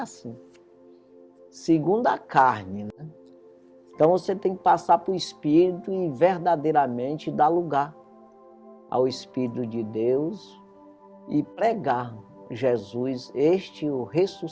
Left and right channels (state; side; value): identical; both; correlation 1.00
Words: assim. Segundo a carne, né? Então você tem que passar para o Espírito e verdadeiramente dar lugar ao Espírito de Deus e pregar Jesus, este o